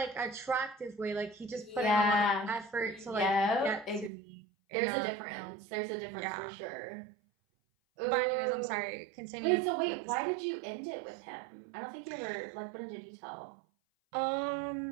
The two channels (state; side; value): drops out; left; at 4.1 s